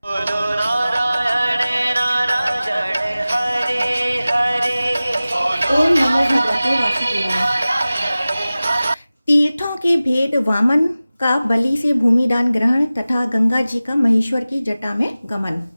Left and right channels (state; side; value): inverted; both; correlation -0.97